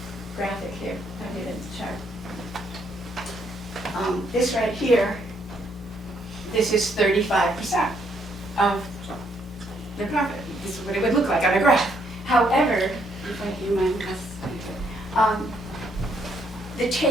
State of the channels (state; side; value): normal; both; correlation 0.72